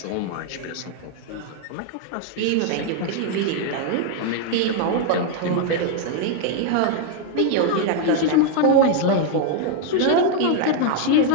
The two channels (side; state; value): both; different; correlation 0.01